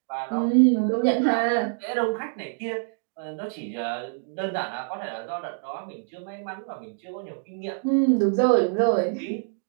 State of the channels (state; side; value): silent; left; digital silence